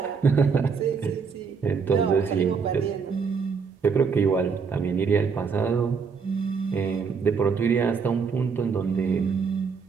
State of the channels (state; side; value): quieter; left; 5.6 dB